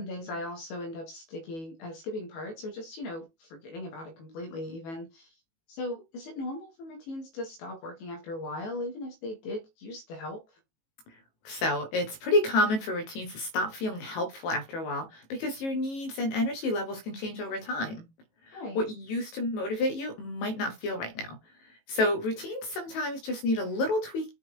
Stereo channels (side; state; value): right; late; 18 ms